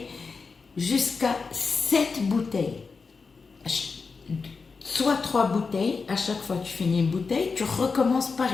jusqu'à 7 bouteilles. Soit 3 bouteilles, à chaque fois que tu finis une bouteille, tu recommences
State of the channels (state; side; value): quieter; right; 4.8 dB